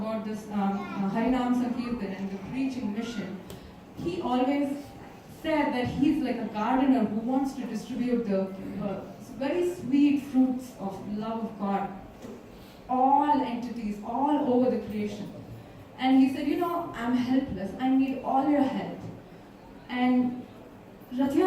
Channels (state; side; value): identical; both; correlation 1.00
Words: this Harinam Sankirtan and the preaching mission, he always said that he's like a gardener who wants to distribute the very sweet fruits of love of God to all entities, all over the creation. And he said, I'm helpless, I need all your help. And Rath